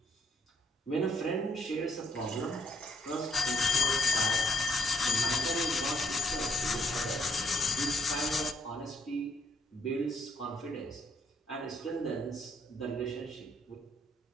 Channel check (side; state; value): both; normal; correlation 0.69